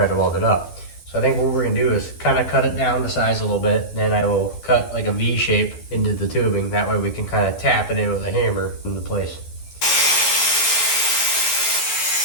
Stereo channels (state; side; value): late; right; 12 ms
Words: to weld it up. So I think what we're gonna do is kind of cut it down to size a little bit. Then I will cut like a V shape into the tubing. That way we can kind of tap it in with a hammer into place.